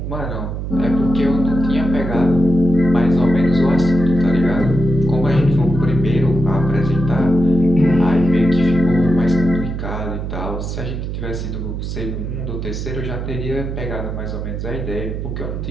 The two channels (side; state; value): right; noise; hum, 5 dB below the sound